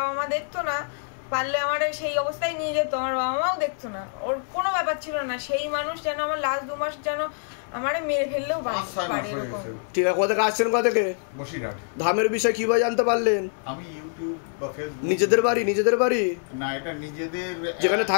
মা দেখতো না, পারলে আমার সেই অবস্থায় নিয়ে যেত, আমার বাবা মাও দেখতো না, ওর কোনো ব্যাপার ছিল না। সেই মানুষ যেন আমার লাস্ট 2 মাস যেন আমারে মেরে ফেললেও পারে। ঠিক আছে, কোথা থেকে আসছেন? কোথা থেকে? বসিরহাট। ধামের বিষয় কিভাবে জানতে পারলেন? আমি ইউটিউব বা ফেসবুক। নিজেদের বাড়ি? নিজেদের বাড়ি না, এটা নিজেদের, যেখানে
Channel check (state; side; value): silent; right; digital silence